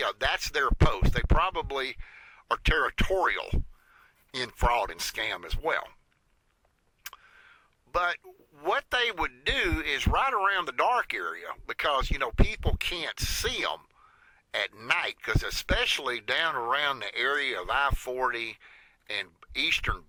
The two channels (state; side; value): identical; both; correlation 1.00